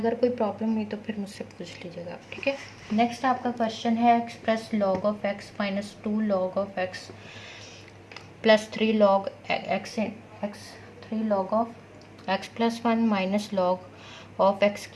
कोई प्रॉब्लम हुई तो फिर मुझसे पूछ लीजिएगा, ठीक है। नेक्स्ट आपका क्वेश्चन है express log of x minus 2 log of x plus 3 log x 3 log of x plus 1 minus log of x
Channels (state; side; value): identical; both; correlation 1.00